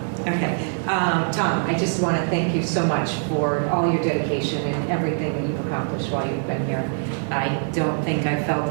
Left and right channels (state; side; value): silent; left; 63 dB below the other